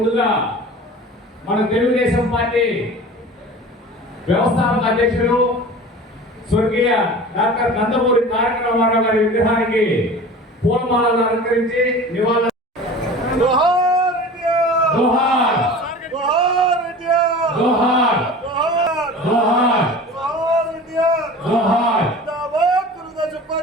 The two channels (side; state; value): both; normal; correlation 0.38